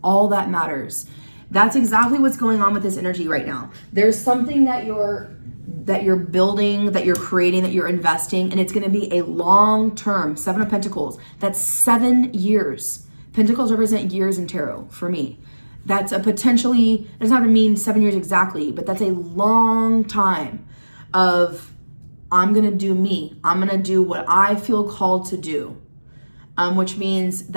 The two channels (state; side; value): inverted; both; correlation -1.00